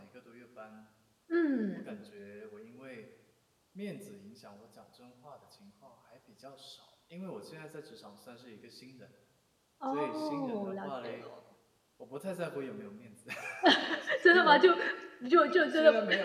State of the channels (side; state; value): both; identical; correlation 1.00